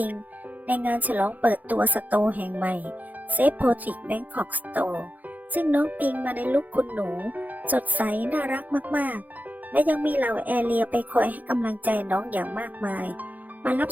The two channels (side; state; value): left; late; 0.081 ms